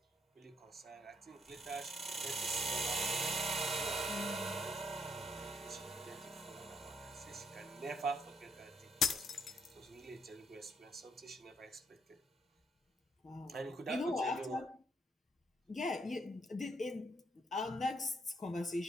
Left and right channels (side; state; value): both; normal; correlation 0.73